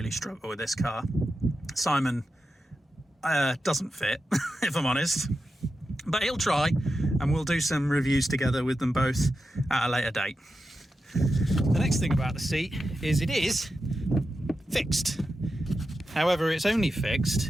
struggle with this car. Simon doesn't fit, if I'm honest, but he'll try, and we'll do some reviews together with them both at a later date. The next thing about the seat is it is fixed. However, it's only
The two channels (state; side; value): normal; both; correlation 0.89